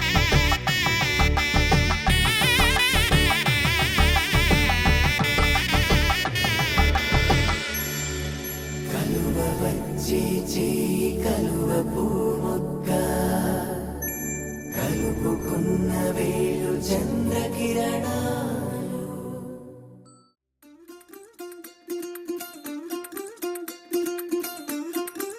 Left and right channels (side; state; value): both; identical; correlation 1.00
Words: కలువ వచ్చే చేయి కలువ పూమొక్క కలుపుకున్న వేలు చంద్రకిరణ